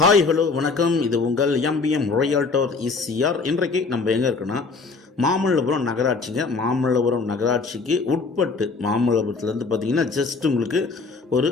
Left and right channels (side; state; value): right; quieter; 4.2 dB